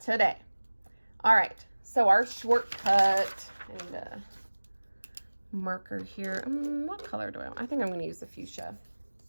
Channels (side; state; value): both; inverted; correlation -1.00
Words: All right, so our shortcut, and marker here. What color do I want? I think I'm going to use the fuchsia.